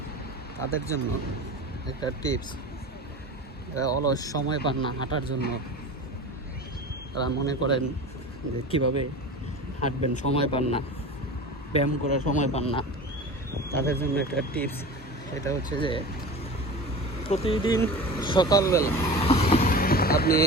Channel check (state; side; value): normal; both; correlation 0.33